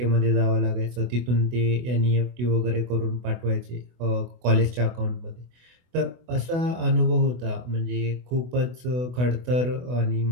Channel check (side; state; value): left; late; 24 ms